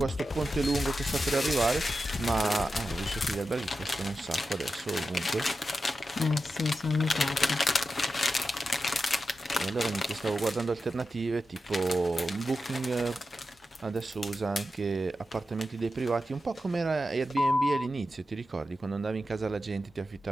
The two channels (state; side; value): normal; both; correlation 0.90